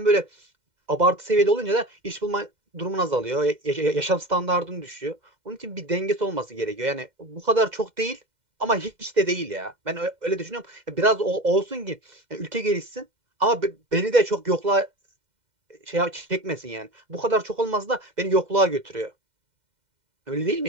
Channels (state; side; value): late; left; 2.1 ms